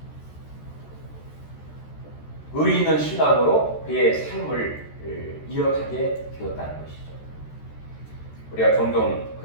의리 있는 신앙으로 그의 삶을 이어가게 되었다는 것이죠. 우리가 종종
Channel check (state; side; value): late; right; 13 ms